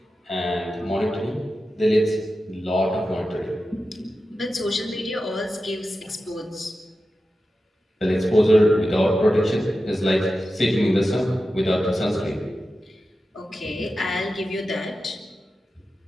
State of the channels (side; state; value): both; normal; correlation 0.92